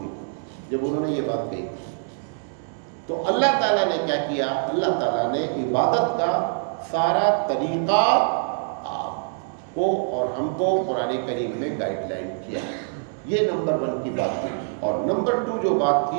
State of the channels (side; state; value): left; silent; digital silence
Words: جب انہوں نے یہ بات کہی۔ تو اللہ تعالیٰ نے کیا کیا؟ اللہ تعالیٰ نے عبادت کا سارا طریقہ آپ کو اور ہم کو قرآن کریم میں گائیڈ لائن کیا۔ یہ نمبر 1 کی بات تھی۔ اور نمبر 2 جو بات